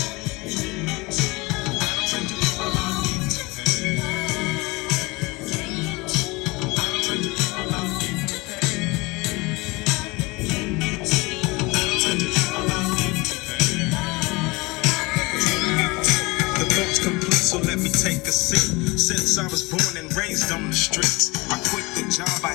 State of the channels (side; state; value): right; quieter; 24.3 dB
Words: So let me take a seat. Since I was born and raised on the streets, I quit the job I